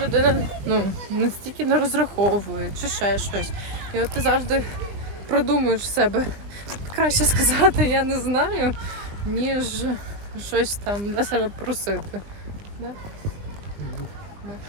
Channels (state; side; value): late; left; 20 ms